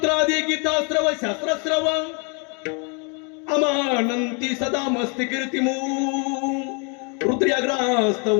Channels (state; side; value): quieter; right; 34.9 dB